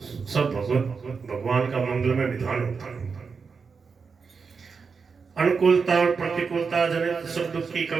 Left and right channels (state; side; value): quieter; left; 5.3 dB